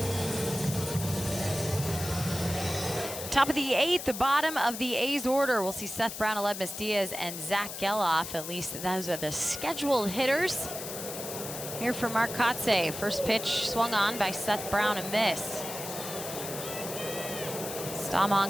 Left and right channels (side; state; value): left; noise; hiss, 8 dB below the sound